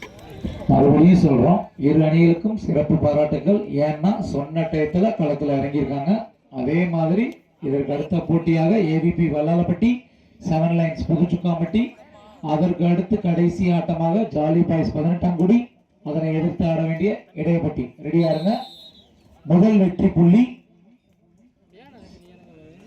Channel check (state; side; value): identical; both; correlation 1.00